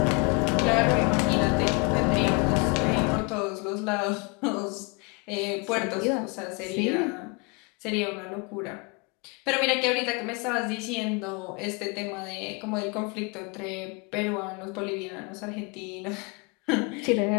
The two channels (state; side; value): quieter; right; 30.8 dB